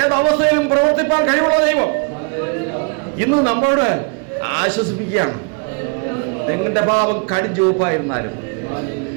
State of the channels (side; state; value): left; quieter; 35.1 dB